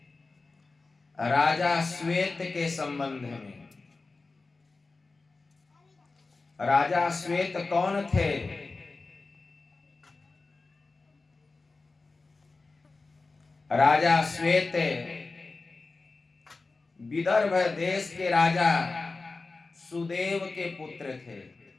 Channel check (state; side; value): quieter; right; 3.7 dB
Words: राजा श्वेत के संबंध में। राजा श्वेत कौन थे? राजा श्वेत विदर्भ देश के राजा सुदेव के पुत्र थे।